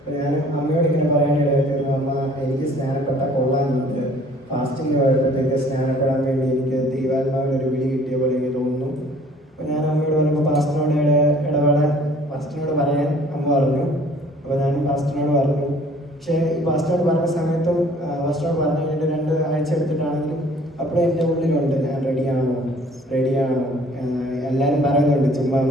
ഞാൻ അമ്മയോട് ഇങ്ങനെ പറയാനിടയായിരുന്നു, അമ്മ എനിക്ക് സ്നാനപ്പെട്ടാൽ കൊള്ളാനുണ്ട്, ഫാസ്റ്റിംഗ് പോയപ്പോഴത്തേക്ക് സ്നാനപ്പെടാൻ വേണ്ടി എനിക്ക് ദൈവാത്മാവിനൊരു വിളി കിട്ടിയ പോലെ എനിക്ക് തോന്നുന്നു. അപ്പോൾ ഞാൻ അമ്മയോട് പറഞ്ഞപ്പോൾ പാസ്റ്ററിനോട് പറയാൻ അമ്മ പറഞ്ഞു. അപ്പോൾ ഞാൻ പാസ്റ്ററിനോട് പറഞ്ഞു, പക്ഷേ ഈ പാസ്റ്റോട് പറഞ്ഞ സമയത്തും പാസ്റ്റോട് പറഞ്ഞു കഴിഞ്ഞിട്ട് 2 ആഴ്ച എടുത്തിട്ടാണെങ്കിലും അപ്പോഴും എൻ്റെ ഉള്ളിലുണ്ട് ഞാൻ റെഡിയാണോ എല്ലാവരും പറയുന്നുണ്ട് ചുമ്മാ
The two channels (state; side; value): normal; both; correlation 0.54